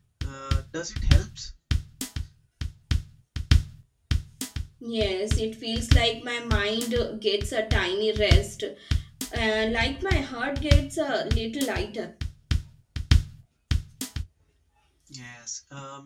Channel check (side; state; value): both; identical; correlation 1.00